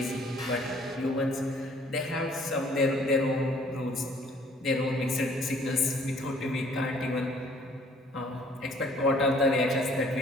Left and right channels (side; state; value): both; normal; correlation 0.58